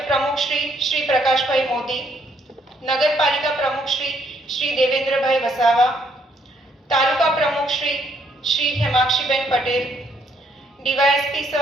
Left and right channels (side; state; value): both; normal; correlation 0.70